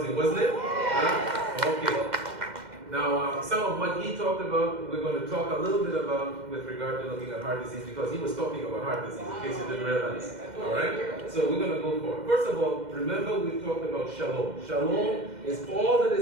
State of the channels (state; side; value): late; left; 2.1 ms